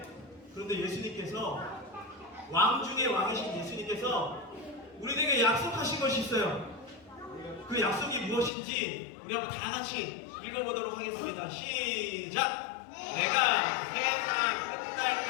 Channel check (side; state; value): right; drops out; at 8.5 s